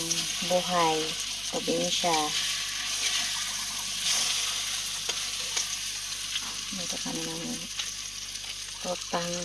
buhay, probinsya. Luto kami ng totang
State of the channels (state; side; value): noise; left; hum, 20 dB below the sound